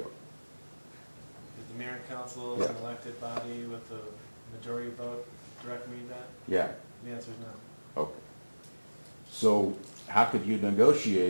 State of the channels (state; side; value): inverted; both; correlation -1.00